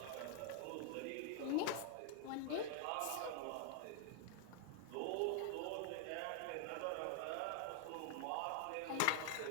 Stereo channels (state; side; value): different; both; correlation -0.01